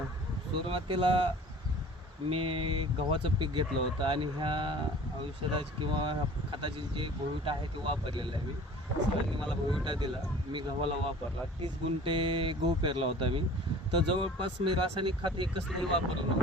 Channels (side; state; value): both; normal; correlation 0.45